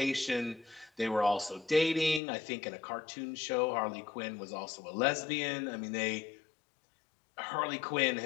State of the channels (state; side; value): drops out; right; at 2.2 s